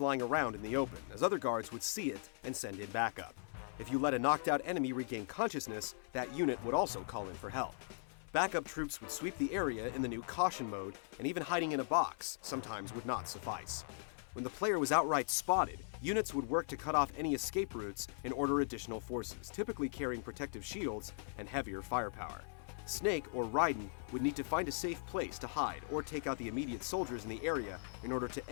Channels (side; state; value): right; silent; 52 dB below the other